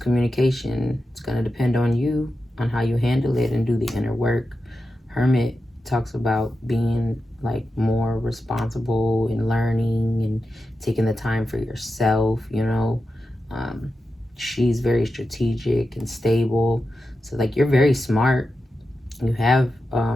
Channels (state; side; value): normal; both; correlation 0.90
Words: it's going to depend on you, on how you handle it and do the inner work. Hermit talks about being like more responsible and learning and taking the time for yourself, you know. She's very strategic and stable. So like you're very smart. You have